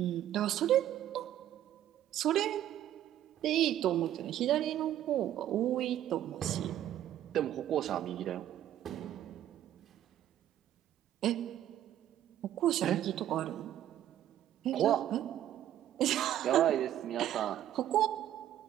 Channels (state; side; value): quieter; left; 11.9 dB